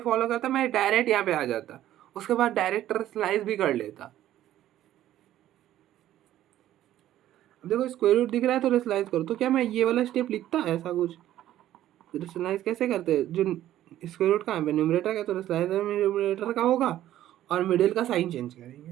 फॉलो करता, मैं डायरेक्ट यहाँ पे आ जाता, उसके बाद डायरेक्ट रेशनलाइज भी कर लेता। अब देखो स्क्वायर रूट दिख रहा है तो रेशनलाइज करो, तो क्या मैं ये वाला स्टेप लिखता ऐसा कुछ? रेशनलाइज कैसे करते हैं, जो स्क्वायर रूट कहाँ पे न्यूमरेटर का, तो रेशनलाइज न्यूमरेटर का होगा और मिडिल का साइन चेंज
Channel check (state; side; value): quieter; left; 12.9 dB